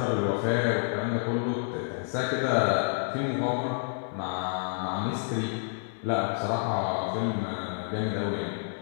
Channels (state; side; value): silent; right; 59 dB below the other